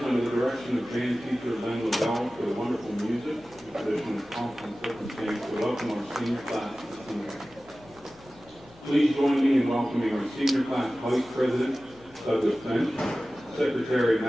under the direction of band teacher Len LaBelle, for the wonderful music, the tradition of pomp and circumstance to welcome our senior class this evening. Please join me in welcoming our senior class vice president, Douglas Finch, secretary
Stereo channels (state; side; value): normal; both; correlation 0.96